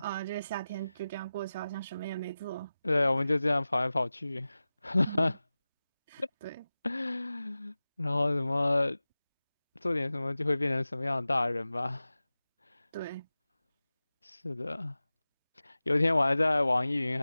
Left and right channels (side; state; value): both; inverted; correlation -0.96